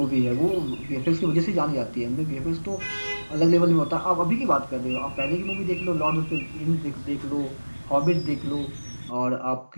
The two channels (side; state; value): both; inverted; correlation -1.00